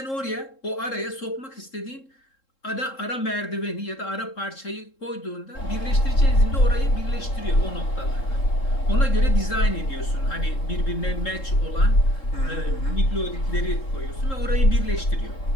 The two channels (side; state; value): right; late; 3.7 ms